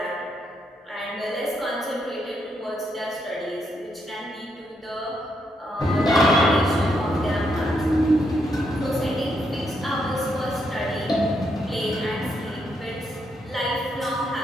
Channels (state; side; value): normal; both; correlation 0.78